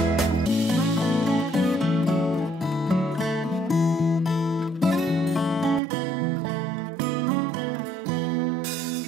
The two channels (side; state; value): left; drops out; at 5.8 s